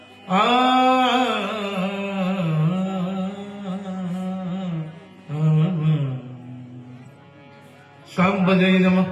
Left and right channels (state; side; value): identical; both; correlation 1.00